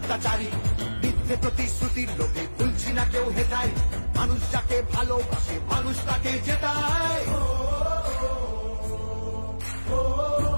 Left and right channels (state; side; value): inverted; both; correlation -1.00